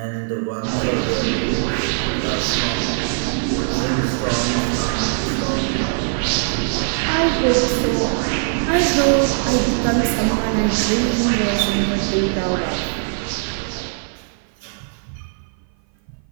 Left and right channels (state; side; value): silent; left; 56 dB below the other